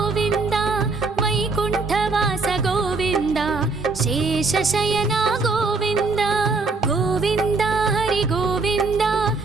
ವೈಕುಂಠವಾಸ ಗೋವಿಂದ ಶೇಷಶಯನ ಗೋವಿಂದ ಗೋವಿಂದ ಹರಿ ಗೋವಿಂದ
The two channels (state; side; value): quieter; left; 4.0 dB